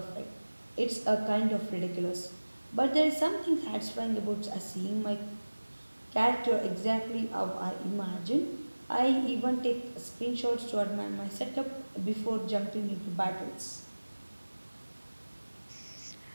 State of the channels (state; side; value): inverted; both; correlation -1.00